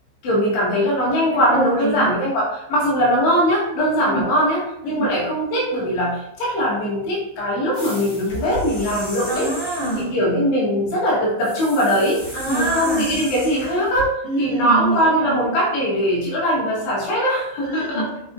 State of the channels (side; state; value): right; late; 15 ms